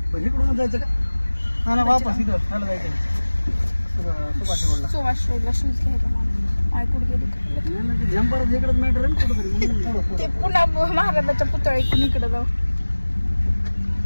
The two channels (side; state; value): both; inverted; correlation -1.00